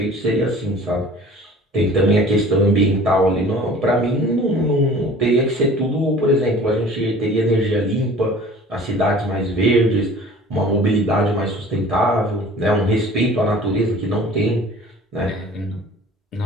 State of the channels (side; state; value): both; normal; correlation 0.46